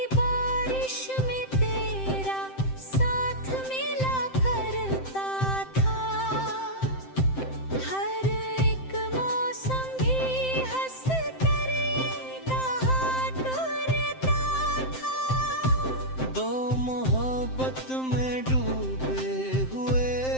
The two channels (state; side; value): late; right; 7.7 ms